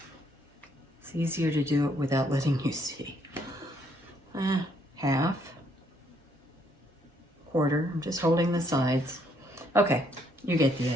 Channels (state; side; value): normal; both; correlation 0.69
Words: It's easier to do it without letting you see. Half, quarter, I'm just holding the sides. Okay. You get the